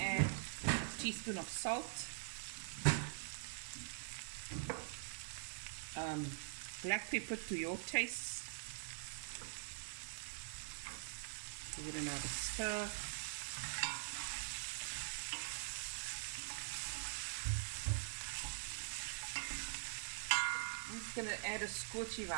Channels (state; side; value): silent; left; digital silence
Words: a teaspoon of salt, black pepper to your taste. Give it another stir. just going to add a scorchy